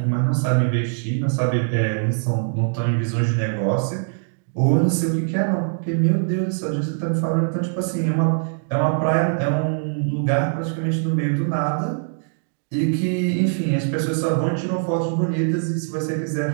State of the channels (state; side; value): silent; left; digital silence